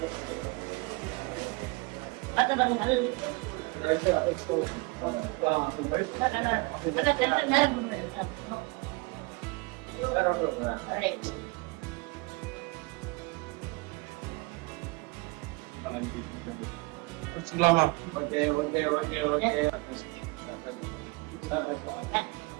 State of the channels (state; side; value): quieter; left; 26.3 dB